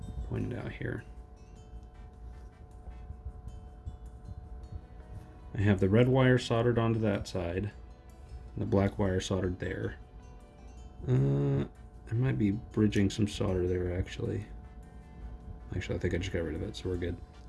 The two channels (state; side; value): identical; both; correlation 1.00